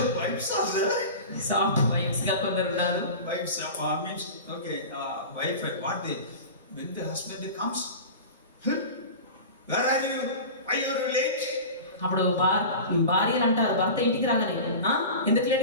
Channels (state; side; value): inverted; both; correlation -0.32